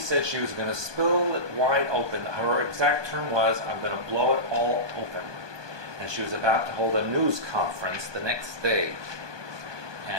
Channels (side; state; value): left; late; 1.2 ms